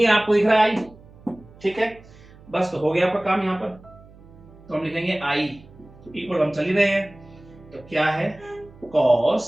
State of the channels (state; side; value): noise; right; hum, 23 dB below the sound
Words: आपको दिख रहा है i, ठीक है, बस तो हो गया आपका काम यहाँ पर, तो हम लिखेंगे i इक्वल, हम चल ही रहे हैं, तो क्या है, cos